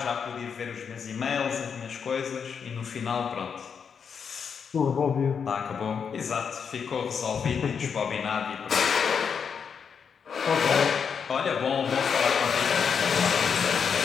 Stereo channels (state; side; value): quieter; right; 6.6 dB